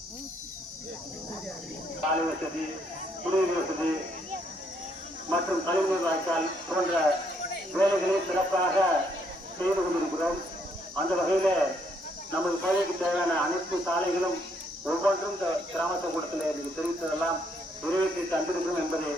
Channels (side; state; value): both; normal; correlation 0.71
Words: சாலை வசதி, குடிநீர் வசதி மற்றும் கழிவுநீர் வாய்க்கால் போன்ற வேலைகளை சிறப்பாக செய்து கொண்டிருக்கிறோம். அந்த வகையில நமது பகுதிக்கு தேவையான அனைத்து சாலைகளும் ஒவ்வொன்றும் கிராம கூட்டத்தில் எனக்கு தெரிவித்ததெல்லாம் நிறைவேற்றி தந்திருக்கிறோம் என்பதை